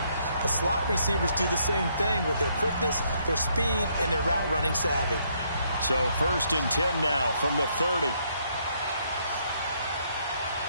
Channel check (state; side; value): inverted; both; correlation -0.71